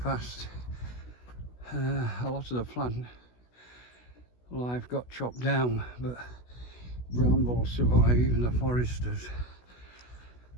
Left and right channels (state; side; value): late; right; 16 ms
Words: A lot of the plant life got chopped down, but brambles survive, even the foresters.